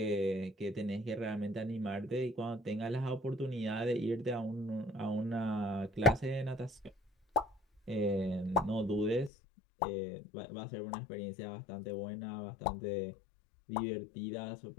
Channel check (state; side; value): drops out; right; at 9.3 s